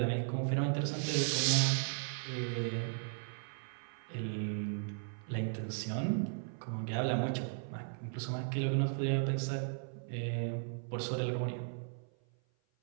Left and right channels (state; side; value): silent; left; 53 dB below the other